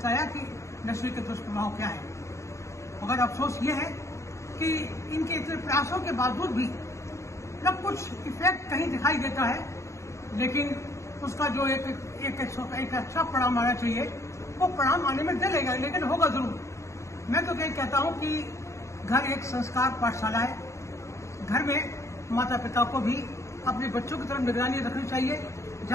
कि नशे के दुष्प्रभाव क्या है। मगर अफसोस ये है कि इनके इतने प्रयासों के बावजूद भी न कुछ इफेक्ट कहीं दिखाई देता है, लेकिन उसका जो एक अच्छा परिणाम आना चाहिए वो परिणाम आने में देर लगेगा, लेकिन होगा जरूर। मैं तो यही कहता हूं कि घर एक संस्कार पाठशाला है। घर में माता पिता को भी अपने बच्चों की तरफ निगरानी रखनी चाहिए।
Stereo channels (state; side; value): late; right; 0.14 ms